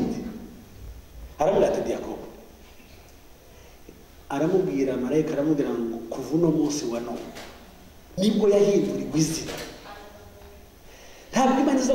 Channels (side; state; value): both; identical; correlation 1.00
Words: Aramubwira ati Yakobo. Aramubwira marayika, aramubwira ngo kuva uno munsi wa none nibwo yahindurirwa izina. Ntabwo Imana iza